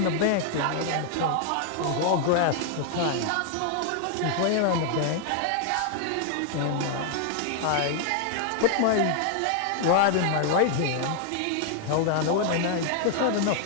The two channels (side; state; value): both; different; correlation 0.00